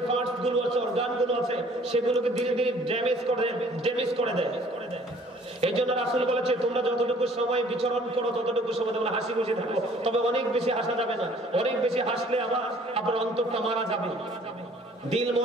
পার্টস গুলো আছে, অর্গান গুলো আছে, সেগুলোকে ধীরে ধীরে ড্যামেজ করে দেয়। এই জন্য রাসূল বলেছে, তোমরা যতটুকু সময় বিচরণ করো ততটুকু সময় তোমরা হাসি খুশি থাকো, তবে অনেক বেশি হাসা যাবে না। অনেক বেশি হাসলে আবার আপনার অন্তরটা মারা যাবে, দিল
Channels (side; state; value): both; normal; correlation 0.56